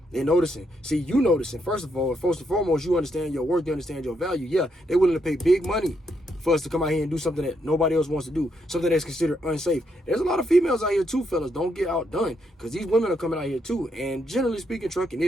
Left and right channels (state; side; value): normal; both; correlation 0.77